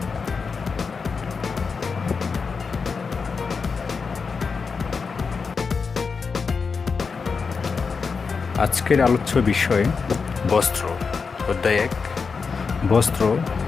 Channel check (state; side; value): quieter; right; 5.2 dB